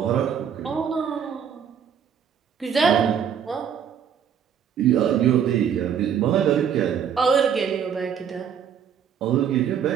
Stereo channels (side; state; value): left; quieter; 8.1 dB